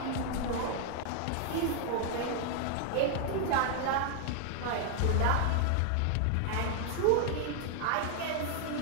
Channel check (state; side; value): different; both; correlation 0.00